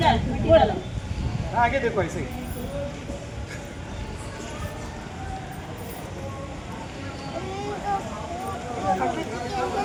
आगे देखो ऐसे ही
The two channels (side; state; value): both; identical; correlation 1.00